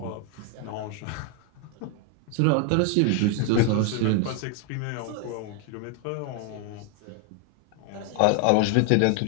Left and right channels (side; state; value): both; different; correlation 0.01